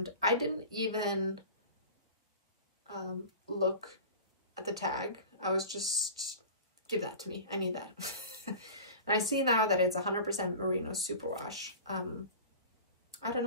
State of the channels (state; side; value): inverted; both; correlation -0.36